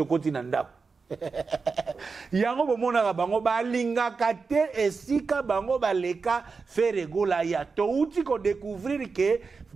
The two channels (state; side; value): quieter; left; 4.7 dB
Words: kontina ndako yango bomona bango balinga kate esika bango baleka faire gola ya to uti ko découvrir que